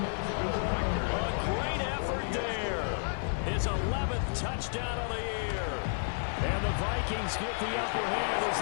A great effort there. His 11th touchdown of the year. And the Vikings get the upper hand as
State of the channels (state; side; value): silent; right; digital silence